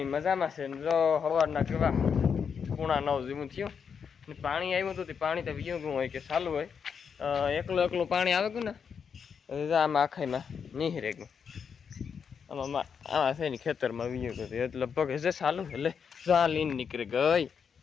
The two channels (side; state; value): right; quieter; 6.7 dB